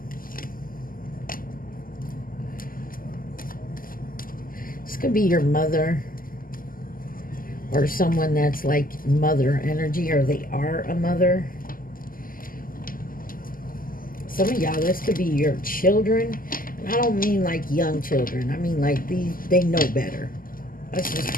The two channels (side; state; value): right; late; 0.41 ms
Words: This could be your mother or someone that's like mother energy, or they are a mother. Some of y'all, this could be your children. And I don't mean like young children. I mean like these, they know better. Let's just